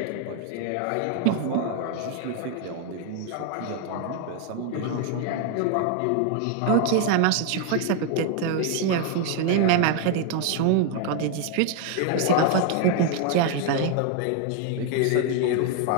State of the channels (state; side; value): different; both; correlation 0.01